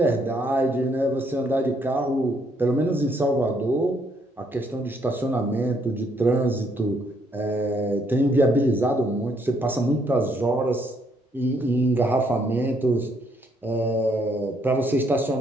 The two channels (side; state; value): both; normal; correlation 0.70